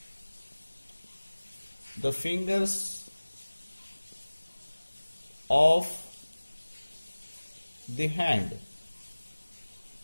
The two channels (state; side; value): inverted; both; correlation -1.00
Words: the fingers of the hand.